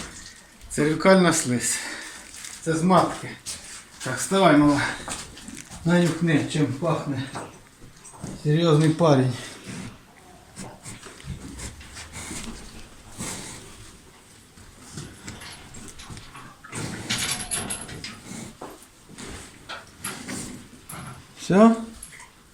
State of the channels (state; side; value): identical; both; correlation 1.00